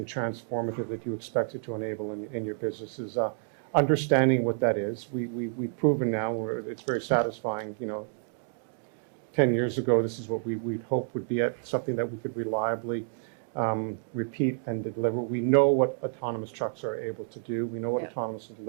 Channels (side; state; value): left; silent; digital silence